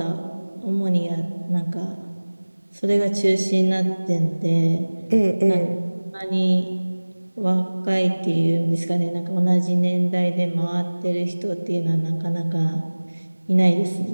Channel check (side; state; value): both; inverted; correlation -1.00